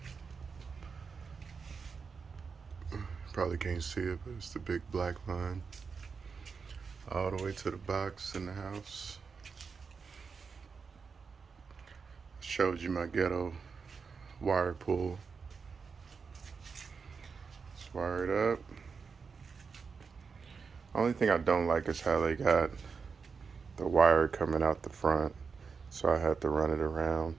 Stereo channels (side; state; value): left; quieter; 5.4 dB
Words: Probably can't see it, but it's the big black line all the way to the box in the house. Showed you my ghetto wire pull. It's wired up. Only thing I don't like is how they got the wire coming out the front, so I had to run it around